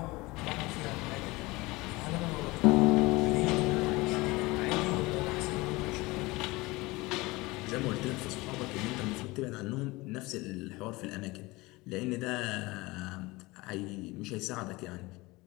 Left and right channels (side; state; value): right; quieter; 22.1 dB